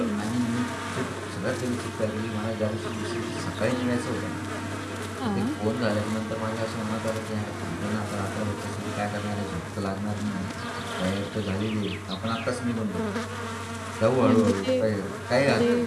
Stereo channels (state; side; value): identical; both; correlation 1.00